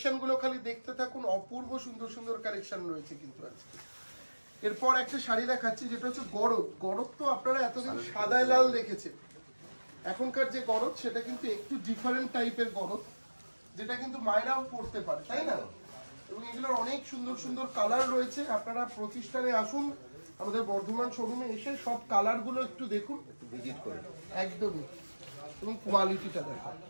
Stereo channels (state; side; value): inverted; both; correlation -1.00